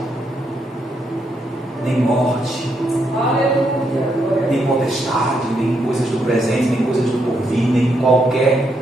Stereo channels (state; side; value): normal; both; correlation 0.78